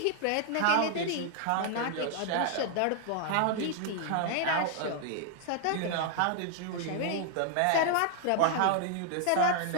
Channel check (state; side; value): different; both; correlation 0.00